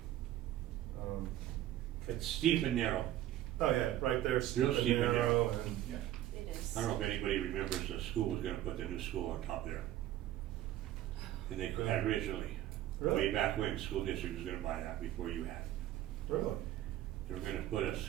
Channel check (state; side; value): quieter; left; 13.2 dB